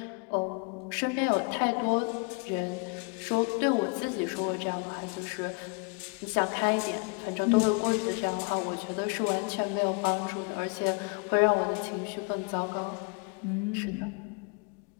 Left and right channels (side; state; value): right; quieter; 33.2 dB